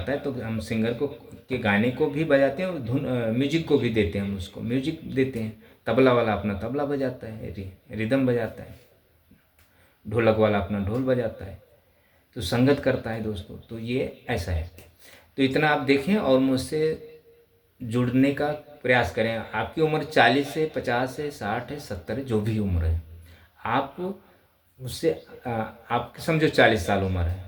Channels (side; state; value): both; identical; correlation 1.00